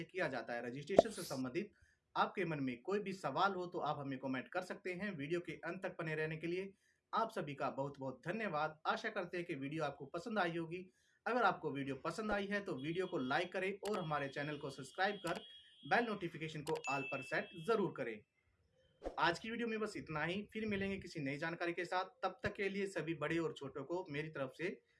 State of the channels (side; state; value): both; identical; correlation 1.00